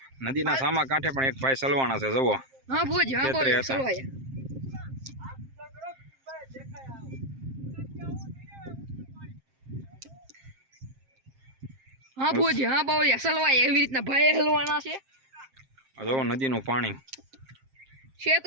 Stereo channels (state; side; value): late; left; 7.6 ms